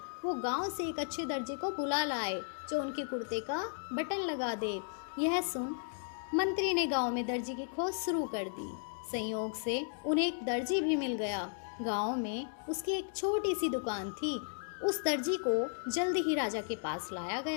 वो गांव से एक अच्छे दर्जी को बुला लाए जो उनके कुर्ते का बटन लगा दे। यह सुन मंत्री ने गांव में दर्जी की खोज शुरू कर दी। संयोग से उन्हें एक दर्जी भी मिल गया। गांव में उसकी एक छोटी सी दुकान थी। उस दर्जी को जल्द ही राजा के पास लाया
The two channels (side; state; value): right; silent; digital silence